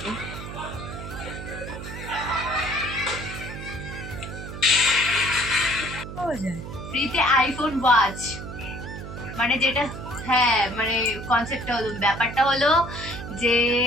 দিন? ফ্রিতে আইফোন ওয়াচ, মানে যেটা, হ্যাঁ মানে কনসেপ্টটা হলো, ব্যাপারটা হলো যে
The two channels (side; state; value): right; noise; hum, 10 dB below the sound